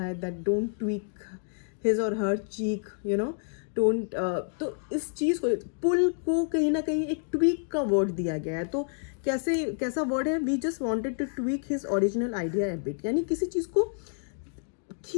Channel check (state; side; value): silent; right; digital silence